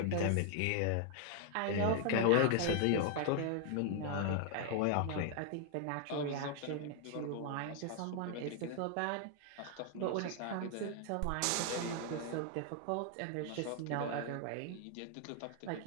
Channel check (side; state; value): both; different; correlation 0.00